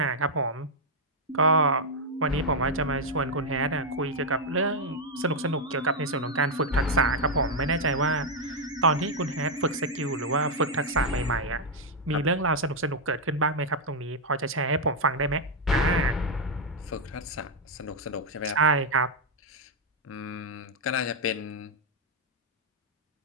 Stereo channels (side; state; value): both; normal; correlation -0.01